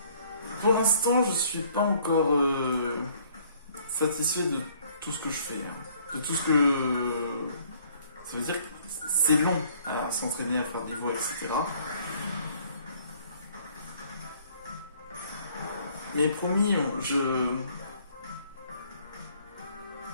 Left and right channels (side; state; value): both; inverted; correlation -0.60